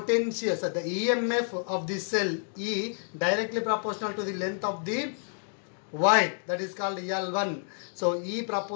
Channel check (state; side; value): silent; right; 58 dB below the other